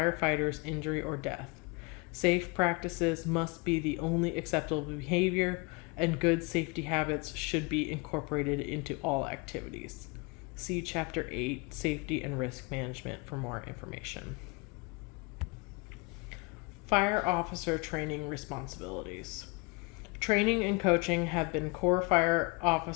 injury or death. Safe practices must be the only acceptable behavior, and good safety habits should be incorporated into all activities. See Chapter 8, Safety and Risk Management for more information. Fire officer training responsibilities. Training and coaching have been core fire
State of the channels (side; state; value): right; quieter; 28.4 dB